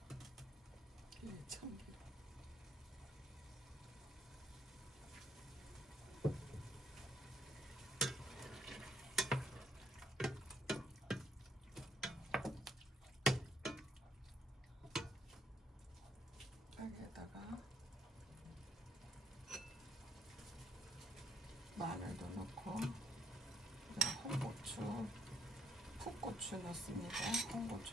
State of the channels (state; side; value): normal; both; correlation 0.68